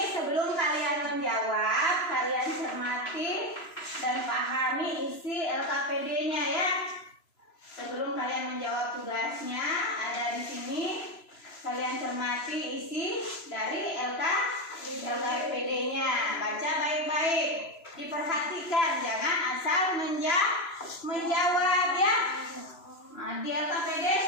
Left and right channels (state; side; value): late; right; 3.0 ms